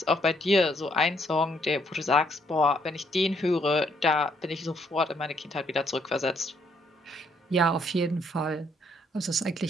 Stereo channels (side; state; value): both; normal; correlation 0.70